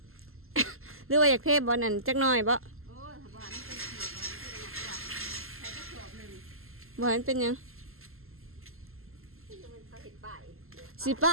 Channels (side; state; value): left; late; 0.62 ms